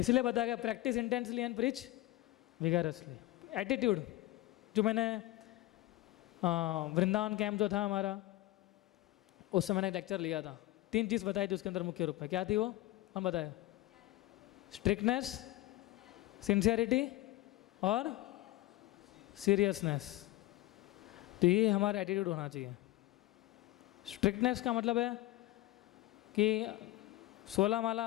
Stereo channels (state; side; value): quieter; right; 17.0 dB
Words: बताया गया practice intensely and preach vigorously. Attitude, जो मैंने वृंदावन कैंप जो था हमारा, उस समय मैंने एक लेक्चर लिया था, 3 चीज़ बताई थी उसके अंदर मुख्य रूप में। क्या थी वो? हम बताए, स्ट्रिक्टनेस, सिंसियरिटी और सीरियसनेस। तो ये हमारा एटीट्यूड होना चाहिए। स्ट्रिक्टनेस का मतलब है कि 16 माला